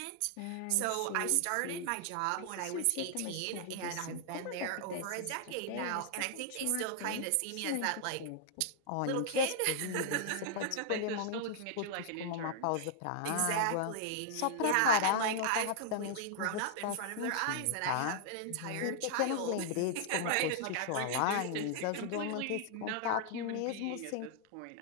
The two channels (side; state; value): both; different; correlation -0.01